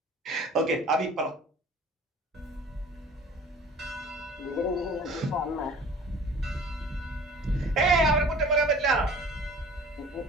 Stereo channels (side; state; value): both; normal; correlation 0.46